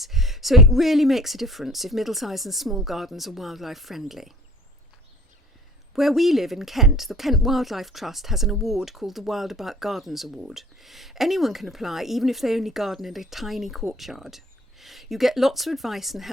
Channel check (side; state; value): both; normal; correlation 0.49